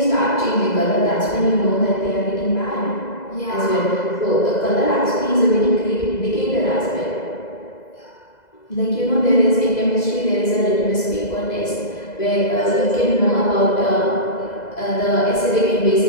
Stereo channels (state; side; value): late; right; 2.0 ms